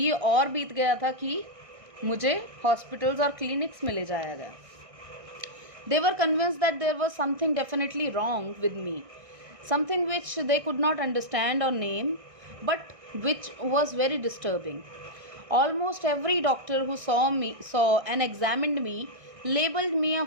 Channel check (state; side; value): late; left; 1.6 ms